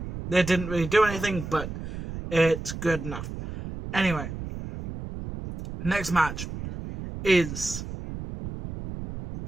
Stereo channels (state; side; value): noise; right; rumble, 9 dB below the sound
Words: They didn't really do anything, but it's good enough. Anyway, next match is